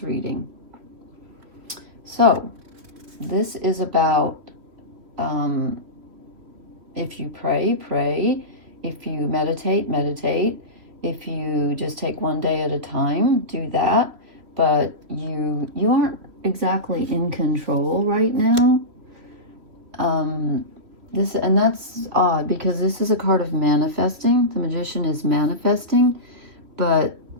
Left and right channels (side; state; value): left; late; 3.2 ms